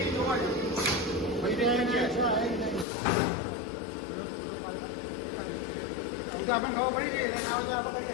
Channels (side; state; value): right; drops out; at 2.9 s